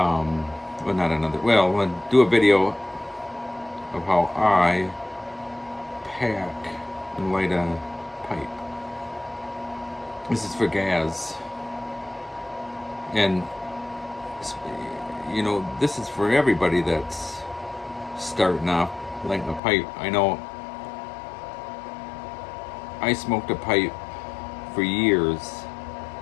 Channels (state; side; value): drops out; right; at 19.6 s